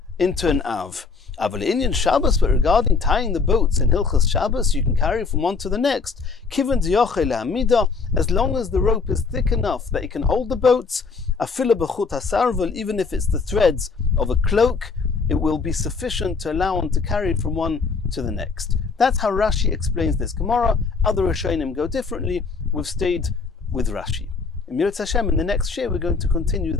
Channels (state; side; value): quieter; right; 4.8 dB